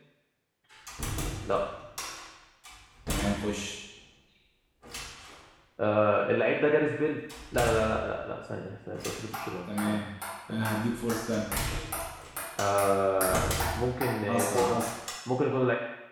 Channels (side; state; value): both; identical; correlation 1.00